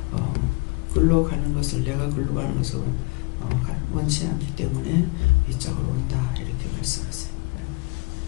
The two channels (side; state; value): right; quieter; 27.7 dB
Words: 글로 가는 것을, 내가 글로 가는 것을 원치 않기 때문에 이쪽으로 온다, 이렇게 말씀하세요.